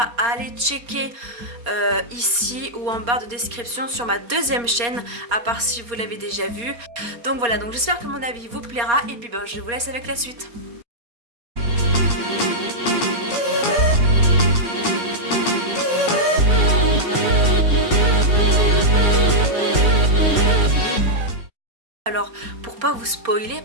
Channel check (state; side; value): late; left; 4.2 ms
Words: à aller checker ici ou en barre de description sur ma deuxième chaîne, à part si vous l'avez déjà vu. Donc voilà, donc j'espère que mon avis vous plaira et puis ben, je vous laisse avec la suite. Alors pour pas vous spoiler